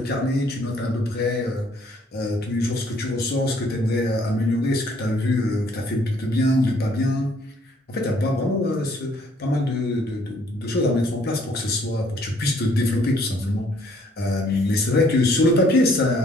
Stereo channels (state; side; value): normal; both; correlation 0.63